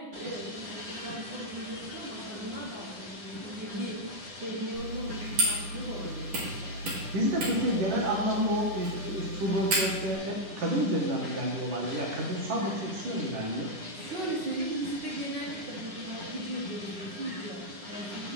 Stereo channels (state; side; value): late; left; 10 ms